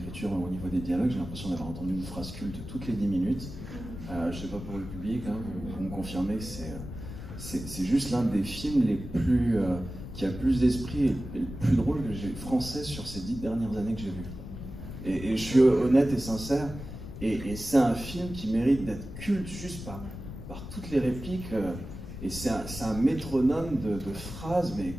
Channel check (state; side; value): noise; left; rumble, 10 dB below the sound